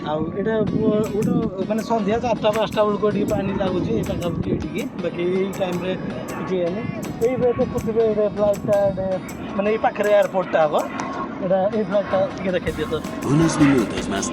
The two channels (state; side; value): identical; both; correlation 1.00